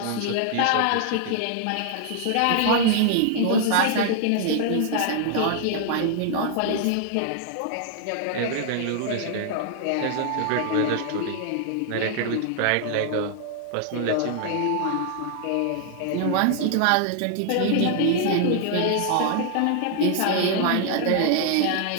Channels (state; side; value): different; both; correlation 0.00